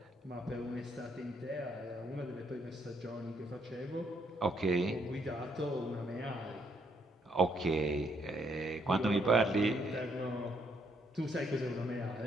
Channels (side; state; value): both; normal; correlation 0.72